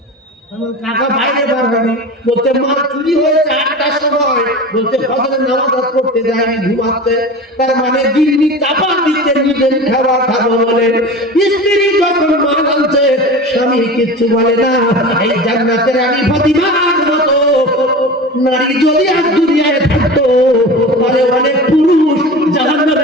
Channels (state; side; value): normal; both; correlation 0.32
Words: কাকা বাইরে বার হয়নি, বলছে মাল চুরি হয়েছে 8টার সময়, বলছে ফজরের নামাজ পড়তে যায়নি, ঘুমাচ্ছে। তার মানে দিল্লি চাপা দিতে নিজের খাবার খাবো বলে। স্ত্রী যখন মাল আনছে স্বামী কিচ্ছু বলে না। এই জান্নাতের রানী ফাতিমার মতো নারী যদি আজ দুনিয়ায় থাকতো, তাহলে অনেক পুরুষ